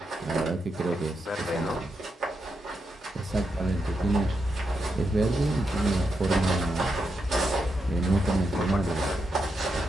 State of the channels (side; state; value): both; normal; correlation 0.84